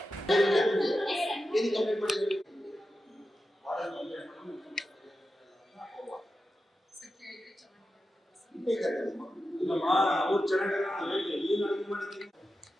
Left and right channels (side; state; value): both; normal; correlation 0.91